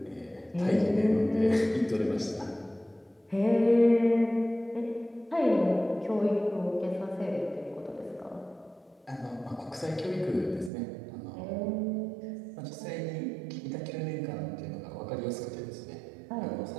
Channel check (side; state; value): left; drops out; at 10.7 s